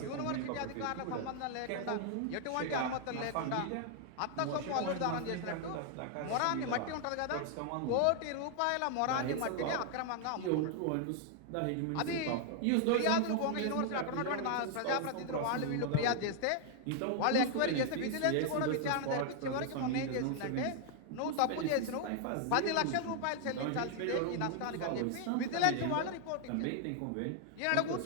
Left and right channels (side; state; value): both; different; correlation 0.00